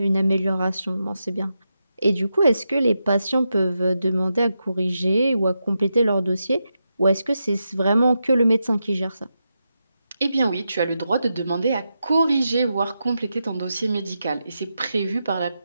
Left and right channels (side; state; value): both; inverted; correlation -0.87